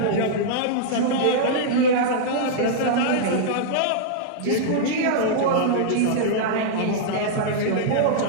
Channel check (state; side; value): different; both; correlation -0.02